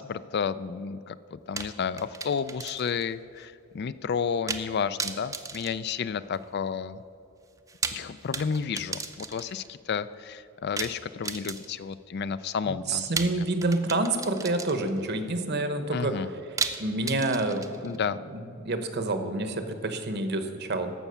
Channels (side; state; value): both; normal; correlation 0.11